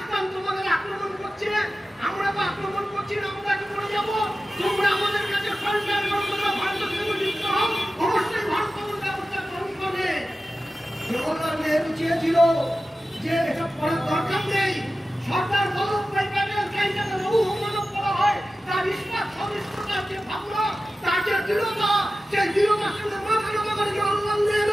তোমাদের আক্রমণ করছে, আমরা তো আক্রমণ করছি না, আমরা কি করে যাবো? তোমরা আমাদের কাছে সরকার ভারতের সঙ্গে যুক্ত হও, অবশ্যই ভারত তোমার ব্যবস্থা গ্রহণ করবে। জওহরলাল নেহরু চেয়েছিল যে এসব করার দরকার নেই। সরকার বল্লভভাই প্যাটেল যাকে লৌহ মানব বলা হয়, তার ইস্পাত সবিস্তার যে ভাবনা, তার যে দৃঢ়তা, সেই দৃঢ়তার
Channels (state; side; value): normal; both; correlation 0.94